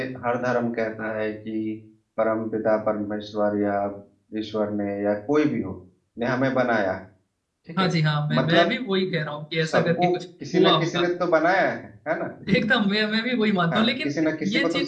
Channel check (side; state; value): both; identical; correlation 1.00